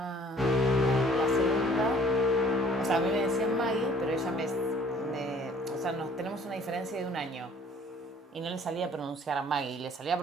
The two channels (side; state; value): both; normal; correlation 0.55